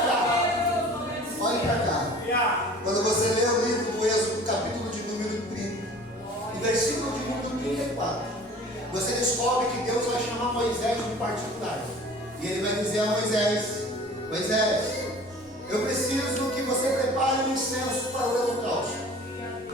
cá. Olhe para cá. Quando você lê o livro do Êxodo, capítulo de número 30, e versículo de número 34, você descobre que Deus vai chamar Moisés de particular. E ele vai dizer a Moisés: Moisés, eu preciso que você prepare um incenso para o holocausto.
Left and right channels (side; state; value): both; normal; correlation 0.45